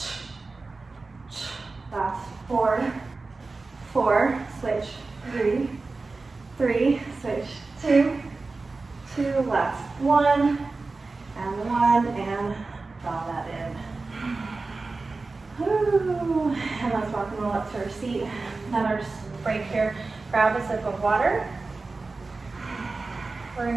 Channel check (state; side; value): quieter; left; 3.7 dB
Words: Last 4, 4, switch, 3, 3, switch, 2, 2, last 1, and draw that in. Woo. And let's rock and roll up to our seat. Another break here. Grab a sip of water. We're